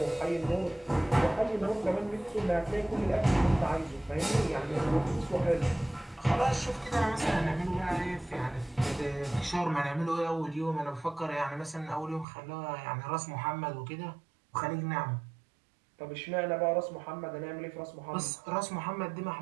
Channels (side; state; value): left; drops out; at 12.2 s